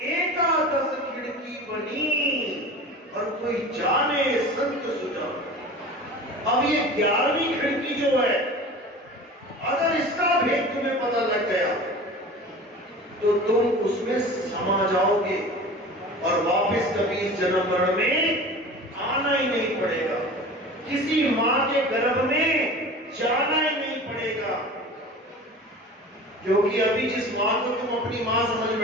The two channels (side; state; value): both; normal; correlation 0.37